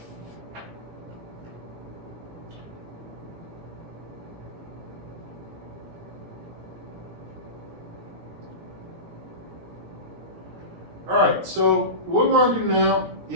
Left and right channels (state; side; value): late; left; 17 ms